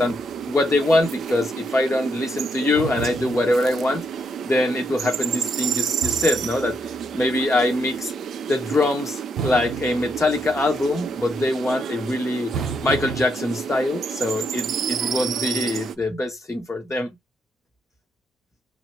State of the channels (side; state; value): both; normal; correlation 0.77